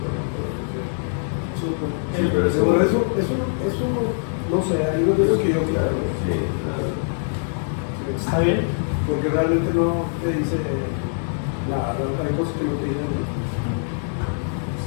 Súper. Sí, pero Eso no sé, hay unos de los que yo Claro, claro. sí, claro. ¿Está bien? Porque realmente no te dice nada, hay cosas que no te dicen.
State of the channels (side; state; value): right; silent; 63 dB below the other